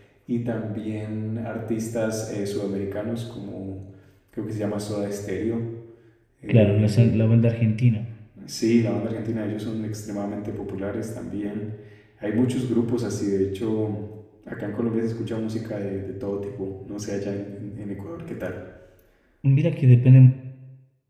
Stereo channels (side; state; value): both; identical; correlation 1.00